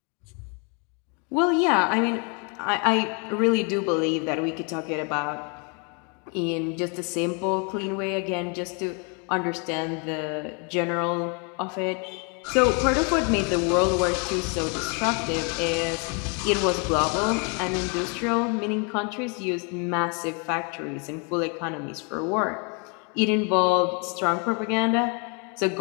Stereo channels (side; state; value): right; quieter; 35.4 dB